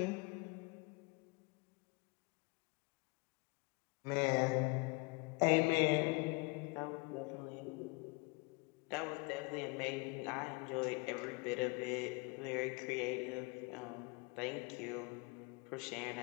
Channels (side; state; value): right; quieter; 29.9 dB